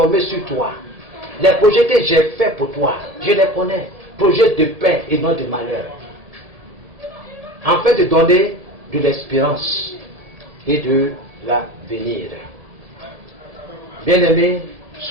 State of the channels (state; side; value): late; left; 1.7 ms